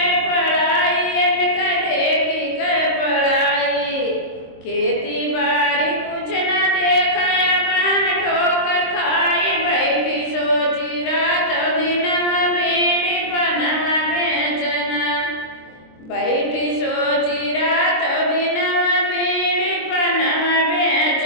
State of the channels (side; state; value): right; late; 23 ms